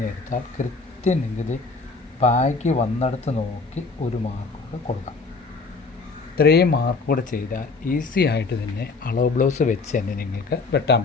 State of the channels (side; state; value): right; quieter; 4.1 dB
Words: എടുത്താൽ കൃത്യം നിങ്ങൾക്ക് ബാക്ക് വന്നെടുത്ത് നോക്കി ഒരു മാർക്ക് കൂടെ കൊടുക്കാം. ഇത്രയും മാർക്ക് കൂടെ ചെയ്താൽ ഈസി ആയിട്ട് തന്നെ അളവ് ബ്ലൗസ് വെച്ച് തന്നെ നിങ്ങൾക്ക് വെട്ടാൻ